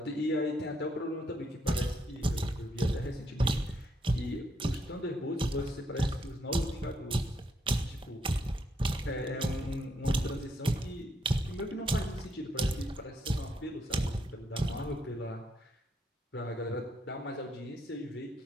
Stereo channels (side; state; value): both; normal; correlation 0.76